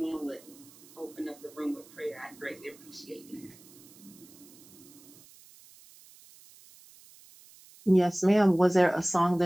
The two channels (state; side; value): noise; right; hiss, 23 dB below the sound